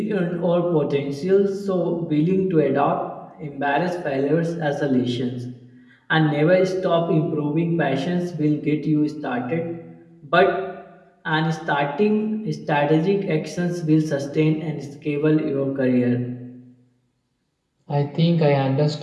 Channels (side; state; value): both; identical; correlation 1.00